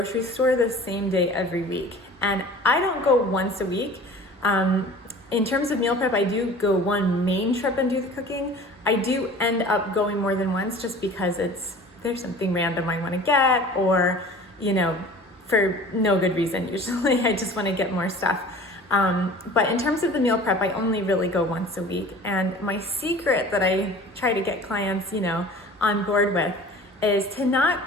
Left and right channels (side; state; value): both; normal; correlation 0.43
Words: store the same day every week. And I don't go once a week. In terms of meal prep, I do go one main trip and do the cooking. I do end up going more than once, just because there's something random I want to get, or, for no good reason usually. I just want to get more stuff. But in terms of the meal prep, I only really go once a week. And my secret that I try to get clients, on board with, is to not